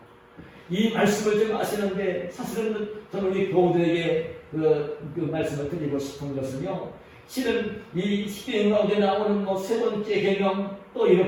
이 말씀을 좀 아시는데, 사실은 저는 우리 교우들에게 그 말씀을 드리고 싶은 것은요, 실은 이 십계명 가운데 나오는 세 번째 계명, 또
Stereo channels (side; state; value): both; identical; correlation 1.00